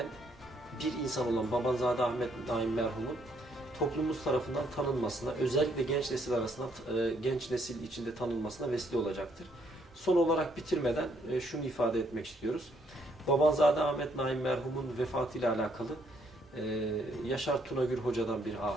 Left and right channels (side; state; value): both; normal; correlation 0.70